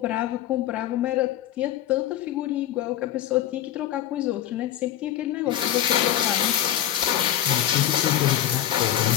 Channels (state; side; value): quieter; right; 11.7 dB